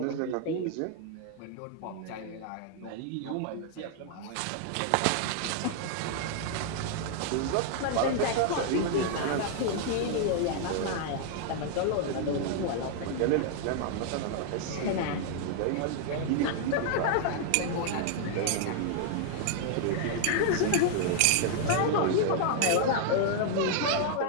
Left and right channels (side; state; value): both; different; correlation 0.00